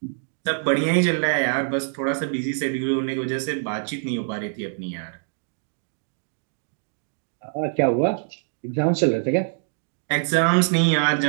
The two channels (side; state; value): left; silent; digital silence